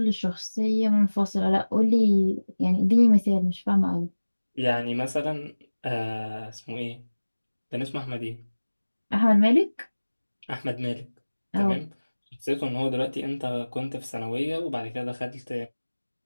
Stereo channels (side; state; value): both; inverted; correlation -1.00